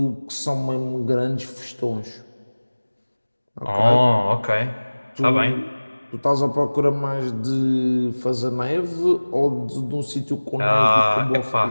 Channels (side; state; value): both; inverted; correlation -1.00